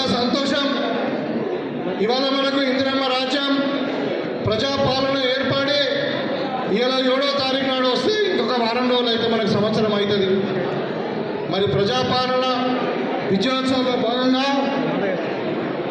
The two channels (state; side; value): identical; both; correlation 1.00